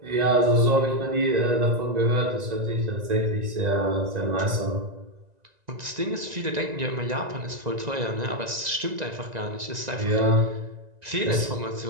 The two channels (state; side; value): late; left; 1.9 ms